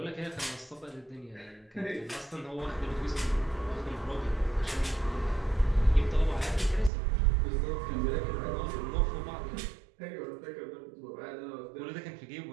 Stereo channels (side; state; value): left; drops out; at 6.9 s